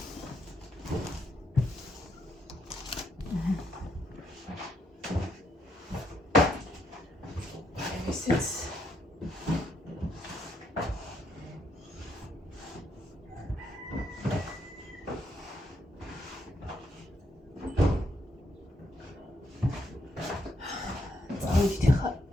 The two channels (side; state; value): both; normal; correlation 0.76